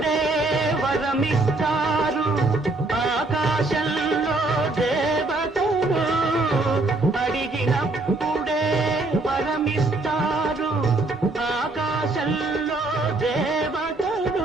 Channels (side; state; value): left; quieter; 3.0 dB